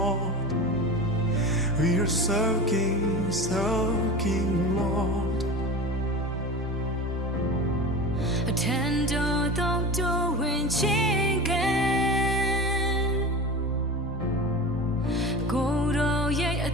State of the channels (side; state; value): both; normal; correlation 0.31